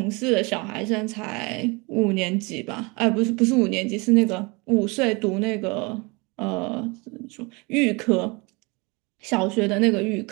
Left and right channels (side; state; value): left; quieter; 27.6 dB